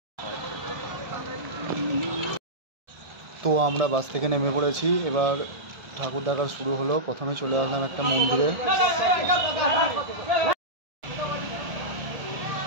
তো আমরা বাস থেকে নেমে পড়েছি। এবার ঠাকুর দেখা শুরু হলো। প্রথমে চলে আসলাম একটা মন্দিরে।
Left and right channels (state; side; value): late; left; 1.6 ms